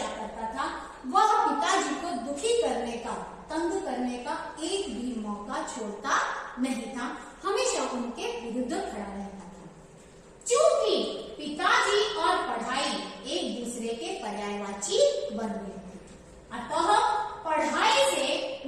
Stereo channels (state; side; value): identical; both; correlation 1.00